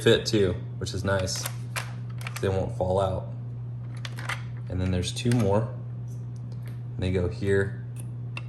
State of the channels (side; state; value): both; identical; correlation 1.00